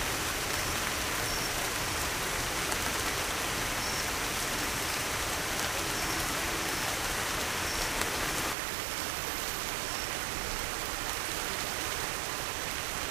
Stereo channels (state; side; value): drops out; left; at 8.6 s